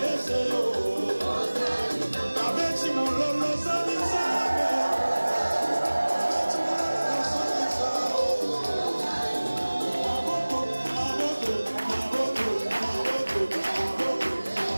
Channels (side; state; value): both; inverted; correlation -1.00